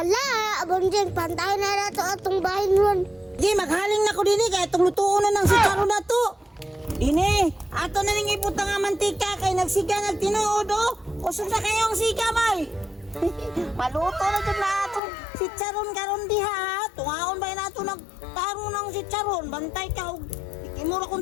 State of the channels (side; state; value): right; drops out; at 15.0 s